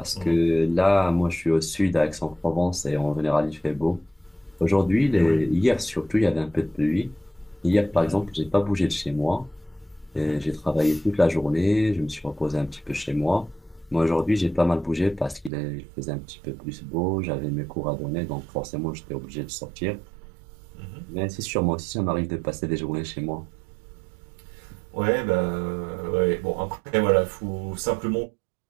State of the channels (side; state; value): left; drops out; at 15.5 s